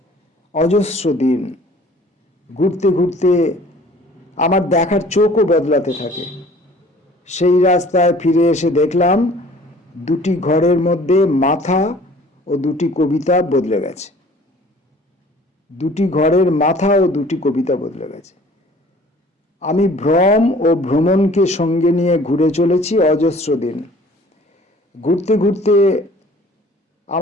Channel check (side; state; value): both; normal; correlation 0.51